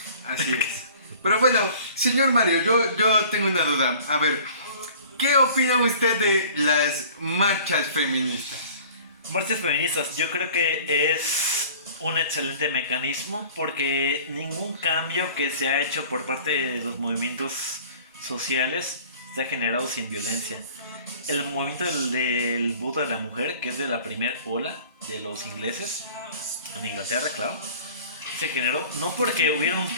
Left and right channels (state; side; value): inverted; both; correlation -0.48